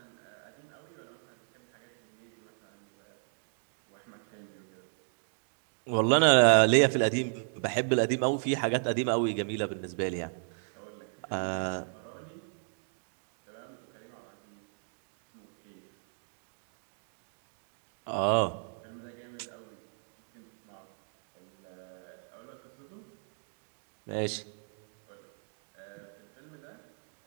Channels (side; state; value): left; silent; digital silence